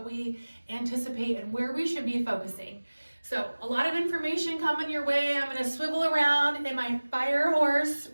we anticipate and where we should be focusing. So a lot of information coming your way. I'm going to swivel around in my fire horse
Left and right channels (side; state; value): both; inverted; correlation -1.00